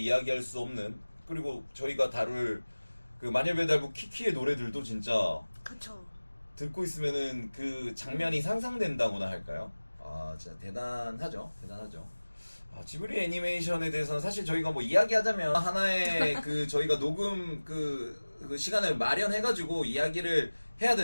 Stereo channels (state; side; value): inverted; both; correlation -1.00